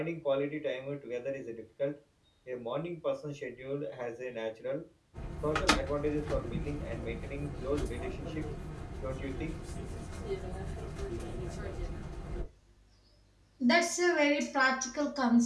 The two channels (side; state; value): both; identical; correlation 1.00